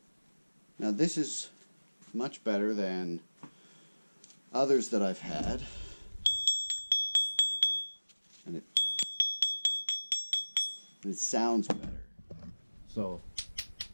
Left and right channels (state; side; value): inverted; both; correlation -1.00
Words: now this is much better than others that I've had, and it sounds better. So